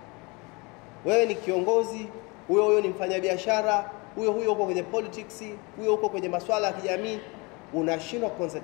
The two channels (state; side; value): quieter; right; 27.6 dB